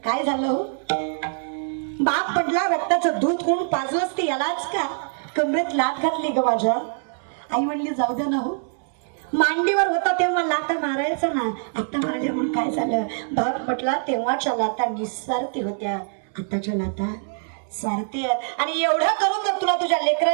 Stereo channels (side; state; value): left; silent; digital silence